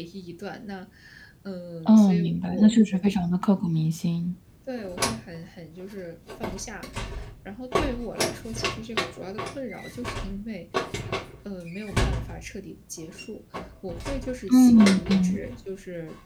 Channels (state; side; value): identical; both; correlation 1.00